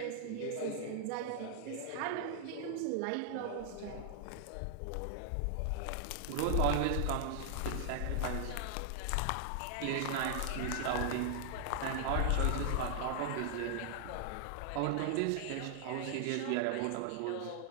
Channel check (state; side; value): different; both; correlation -0.01